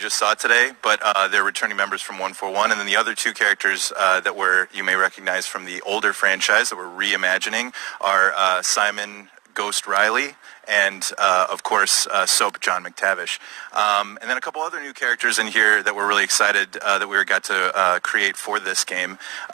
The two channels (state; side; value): quieter; left; 21.7 dB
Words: saw today, but they're returning members from 141, and then the other two characters that you may recognize from the older franchise that we're reimagining are Simon Ghost Riley and, of course, Soap John McTavish. And then a couple other new characters in here that we're really excited that we got to create for this game.